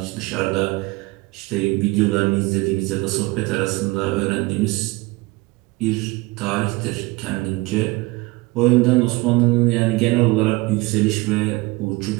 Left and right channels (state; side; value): quieter; left; 22.7 dB